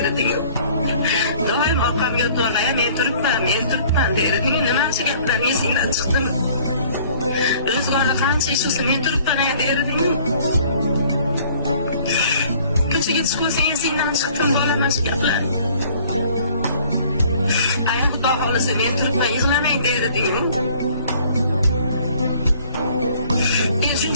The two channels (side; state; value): both; inverted; correlation -0.55